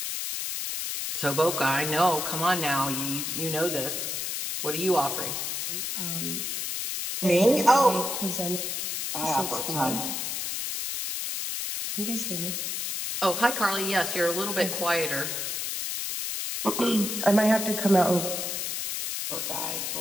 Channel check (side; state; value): left; noise; hiss, 3 dB below the sound